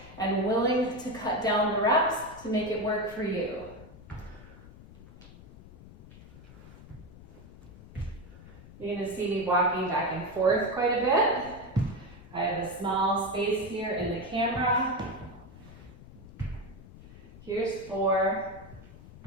and willing to cut down the reps to make it work for you. You're going to see me walking back and forth quite a bit. I have a small space here in the camera. Here's 4.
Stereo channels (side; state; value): left; noise; rumble, 18 dB below the sound